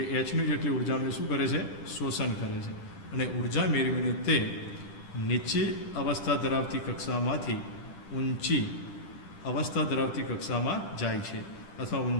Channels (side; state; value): right; late; 10 ms